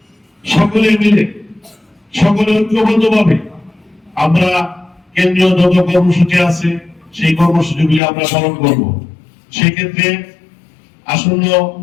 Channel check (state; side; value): drops out; right; at 8.0 s